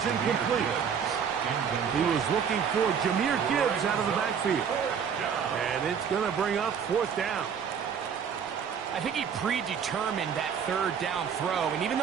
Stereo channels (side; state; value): left; quieter; 7.3 dB